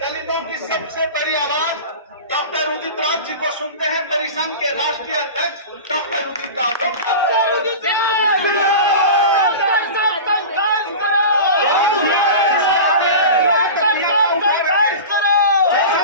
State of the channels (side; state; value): both; inverted; correlation -0.31